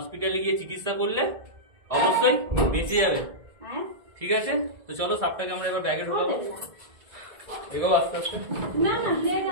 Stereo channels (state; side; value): late; left; 1.6 ms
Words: গিয়ে চিকিৎসা করলে অবশ্যই বেঁচে যাবে, ঠিক আছে। তো চলো সাপটাকে আমরা এবার ব্যাগে ঢোকাবো। এগো আস্তে আস্তে। না না ले